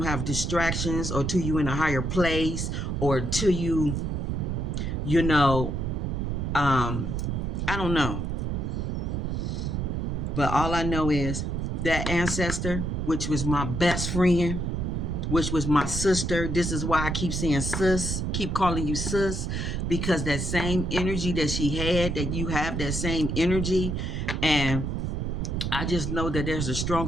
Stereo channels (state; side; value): noise; right; rumble, 1 dB below the sound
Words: have distractions or till you in a higher place or till you know, I don't know. But all I know is that ancestor, which was my best friend, which was my sister. This is why I keep saying sis, keep calling you sis, because that same energy that she had, that you have that same energy. And I just know that there's a